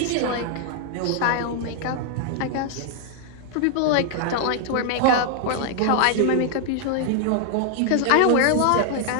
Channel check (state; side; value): different; both; correlation 0.00